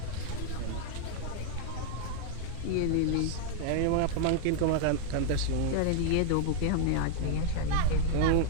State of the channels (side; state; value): both; different; correlation 0.00